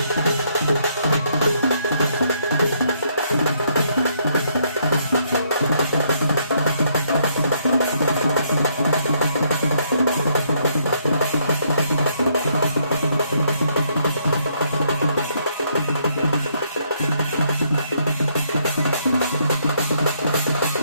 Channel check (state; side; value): inverted; both; correlation -0.71